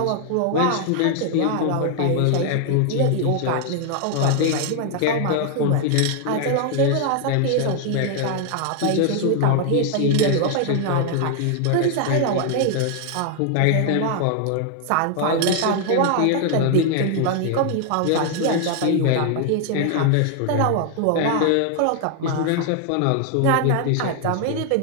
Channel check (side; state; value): both; different; correlation 0.00